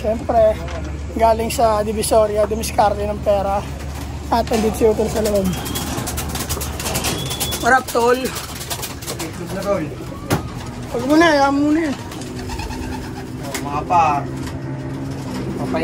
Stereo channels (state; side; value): identical; both; correlation 1.00